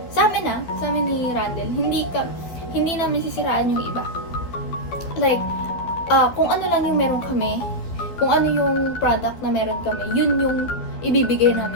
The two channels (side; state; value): right; late; 12 ms